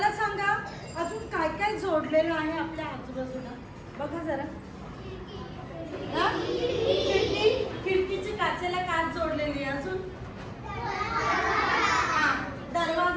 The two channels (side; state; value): both; identical; correlation 1.00